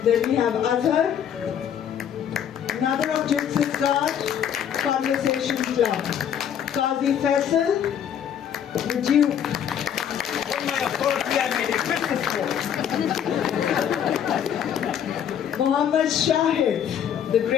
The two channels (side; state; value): right; quieter; 9.0 dB